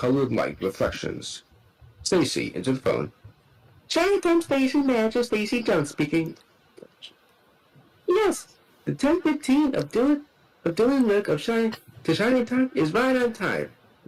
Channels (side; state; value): both; identical; correlation 1.00